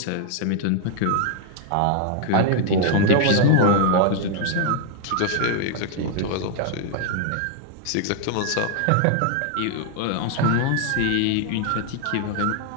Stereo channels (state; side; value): different; both; correlation 0.00